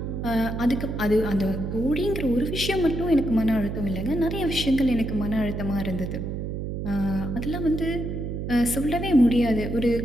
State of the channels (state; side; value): noise; right; hum, 4 dB below the sound